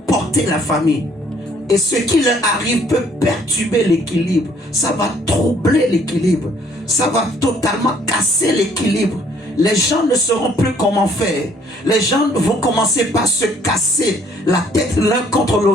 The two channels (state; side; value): normal; both; correlation 0.62